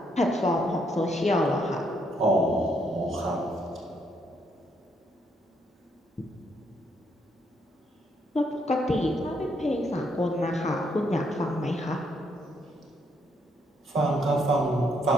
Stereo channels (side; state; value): both; normal; correlation 0.73